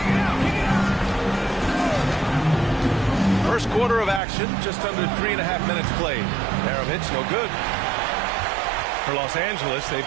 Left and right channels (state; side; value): drops out; left; at 4.2 s